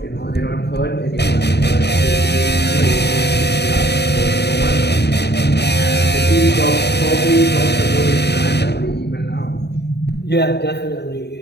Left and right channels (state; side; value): late; right; 0.48 ms